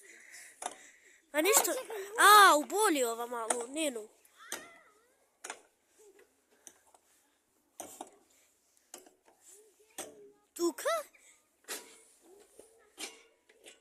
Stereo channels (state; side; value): identical; both; correlation 1.00